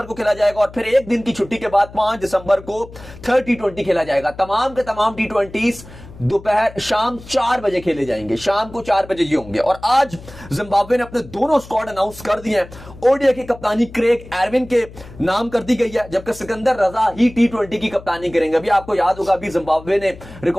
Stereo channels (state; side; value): noise; left; hum, 18 dB below the sound